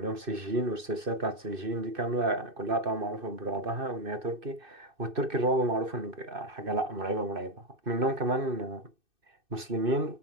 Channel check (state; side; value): late; left; 2.6 ms